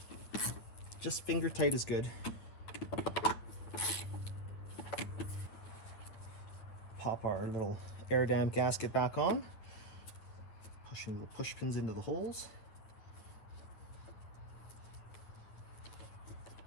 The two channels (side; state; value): right; late; 9.5 ms